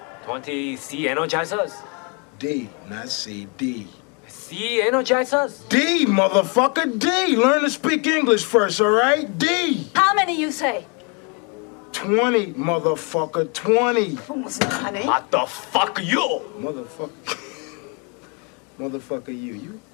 20 C energizers? D, not C, D. C energizers? D, motherfucker, D. Learn to speak English first, all right? D. How many you say? 20, motherfucker, 20. What the fuck you? Motherfucker, you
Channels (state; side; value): quieter; right; 34.7 dB